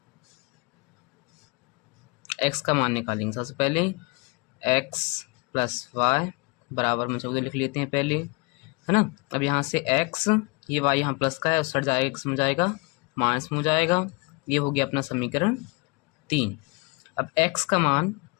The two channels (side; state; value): right; quieter; 28.3 dB